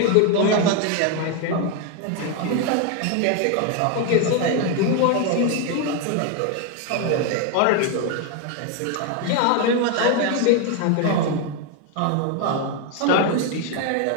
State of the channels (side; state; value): both; different; correlation 0.01